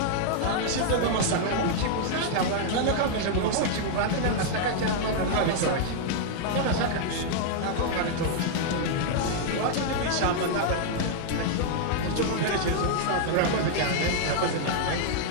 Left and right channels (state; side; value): different; both; correlation -0.01